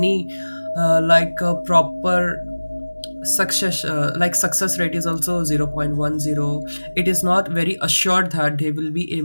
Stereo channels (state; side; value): inverted; both; correlation -1.00